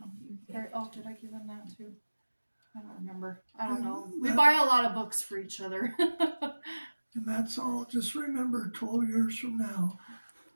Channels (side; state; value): both; inverted; correlation -1.00